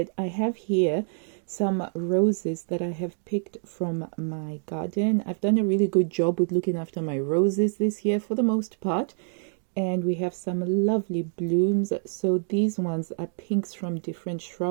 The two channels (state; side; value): silent; left; 57 dB below the other